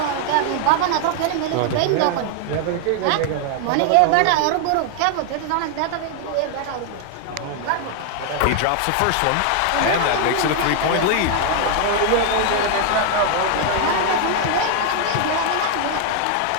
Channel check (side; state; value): both; different; correlation 0.00